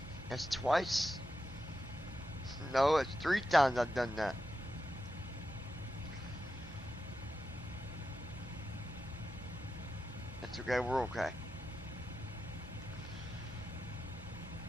That's twice. No, it's 3 times I've done that. That's okay, we're okay.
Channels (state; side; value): normal; both; correlation 0.89